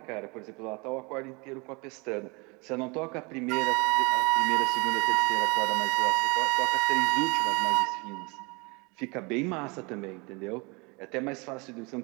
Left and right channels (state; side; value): quieter; left; 28.2 dB